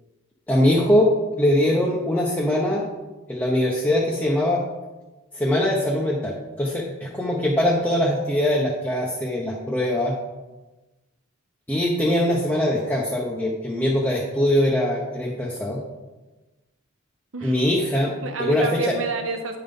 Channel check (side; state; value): both; normal; correlation 0.60